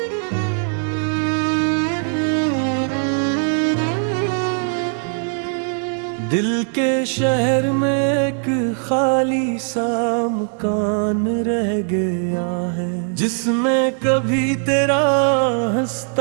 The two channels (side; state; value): left; silent; 55 dB below the other